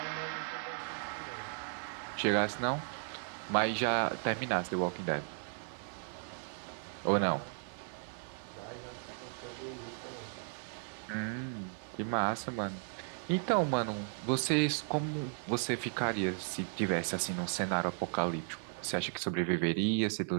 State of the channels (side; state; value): left; silent; 54 dB below the other